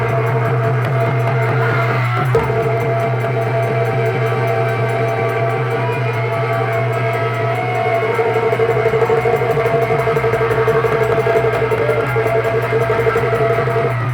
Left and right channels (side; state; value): both; identical; correlation 1.00